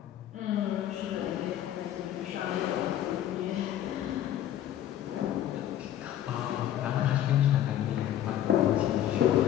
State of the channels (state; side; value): quieter; right; 11.6 dB